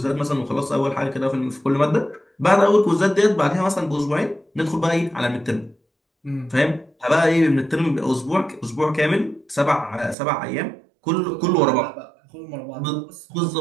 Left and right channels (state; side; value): drops out; left; at 10.2 s